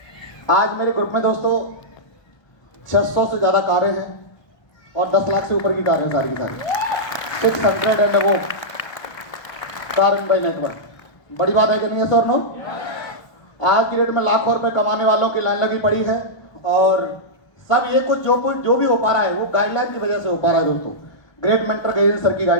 आज मेरे ग्रुप में दोस्तों 600 से ज्यादा कारें हैं और 10 लाख से ऊपर की कारें सारी की सारी, 600 एंड वो दारुण भाई नेटवर्क, बड़ी बात है कि नहीं है सर? नो, आज की डेट में लाखों रुपए कमाने वालों की लाइन लगी पड़ी है और सब ये कुछ जो भी हो पा रहा है वो गाइडलाइन की वजह से हो पा रहा है दोस्तों, ग्रेट मेंटर गैजेंद्र सर की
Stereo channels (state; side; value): late; right; 1.2 ms